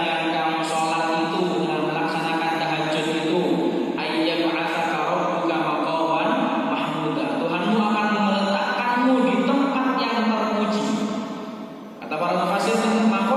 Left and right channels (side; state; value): both; identical; correlation 1.00